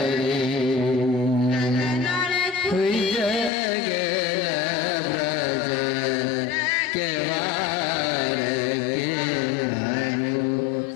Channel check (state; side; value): drops out; right; at 3.5 s